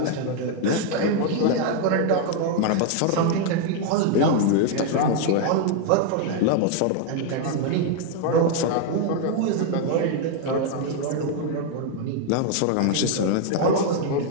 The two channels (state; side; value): different; both; correlation 0.00